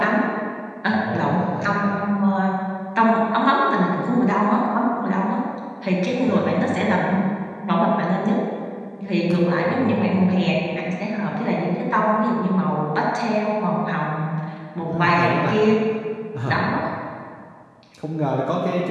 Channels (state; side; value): identical; both; correlation 1.00